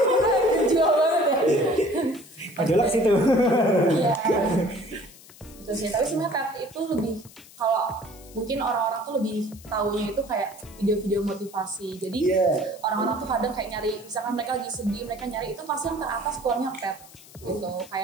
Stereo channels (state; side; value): noise; left; hiss, 21 dB below the sound